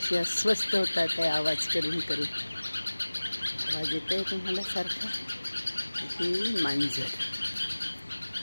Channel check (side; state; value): both; inverted; correlation -1.00